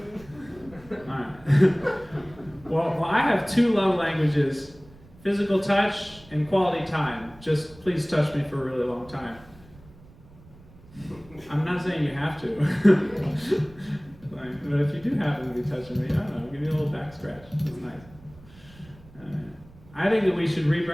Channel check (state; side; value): noise; right; rumble, 23 dB below the sound